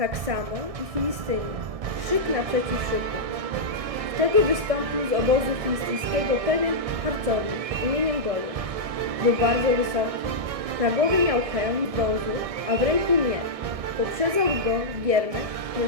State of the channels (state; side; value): late; left; 1.6 ms